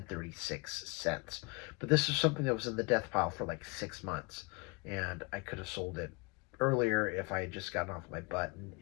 But this is something that was in the death pile for like 6 months. And I could have sold it earlier if I had just gotten off my butt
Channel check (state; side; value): quieter; right; 28.7 dB